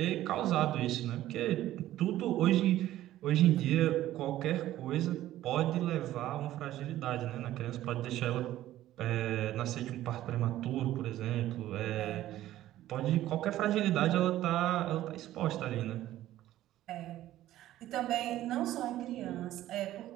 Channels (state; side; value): quieter; left; 14.1 dB